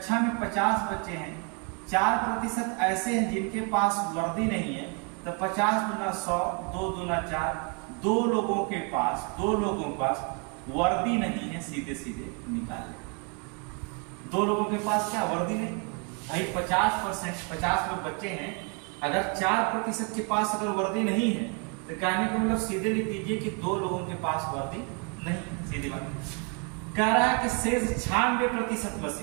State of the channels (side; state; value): left; quieter; 36.0 dB